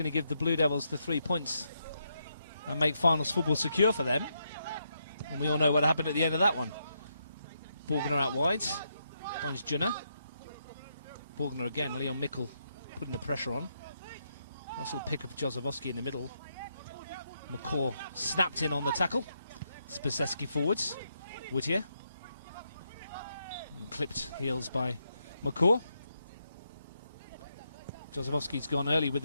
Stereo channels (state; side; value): inverted; both; correlation -0.80